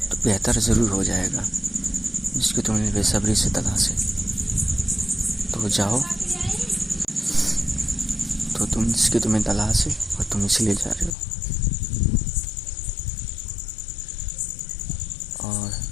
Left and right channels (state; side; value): drops out; right; at 11.1 s